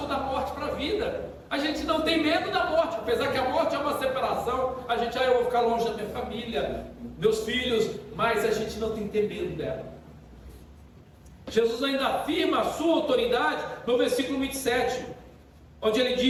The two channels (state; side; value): identical; both; correlation 1.00